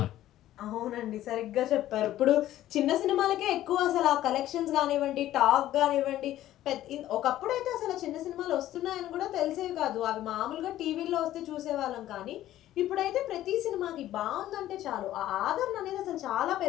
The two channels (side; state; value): right; quieter; 13.6 dB